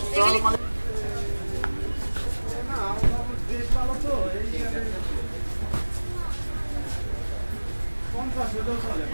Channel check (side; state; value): both; inverted; correlation -1.00